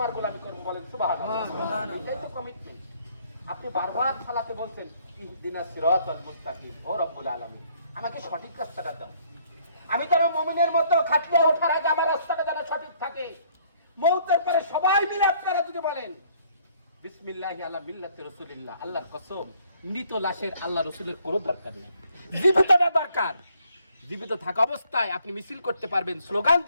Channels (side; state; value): both; inverted; correlation -0.64